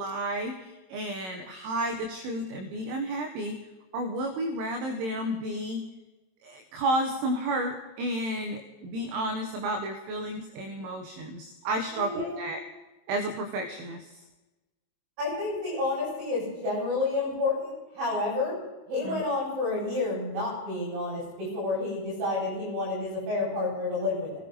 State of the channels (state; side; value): late; left; 27 ms